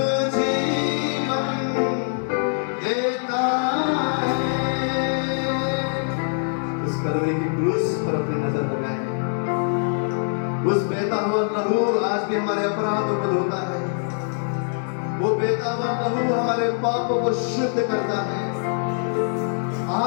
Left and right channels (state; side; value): silent; right; digital silence